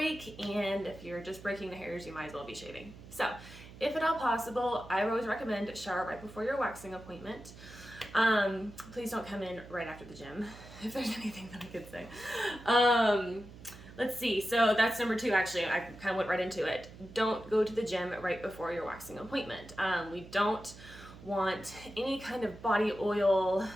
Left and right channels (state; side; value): noise; right; hum, 17 dB below the sound